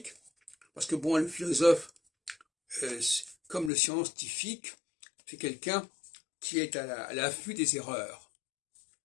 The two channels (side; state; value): right; drops out; at 3.7 s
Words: parce que bon, le philosophe, comme le scientifique, c'est quelqu'un qui est à l'affût des erreurs.